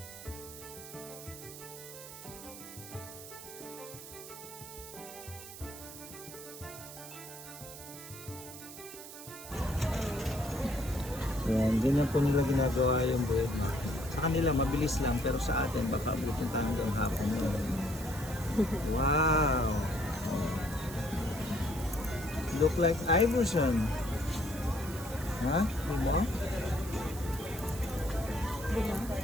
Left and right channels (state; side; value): noise; right; hiss, 13 dB below the sound